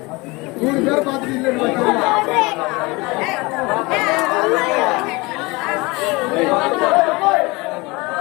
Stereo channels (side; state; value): right; quieter; 24.4 dB